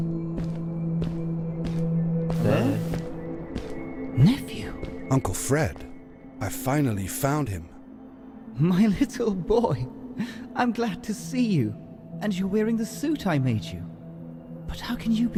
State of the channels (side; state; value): both; identical; correlation 1.00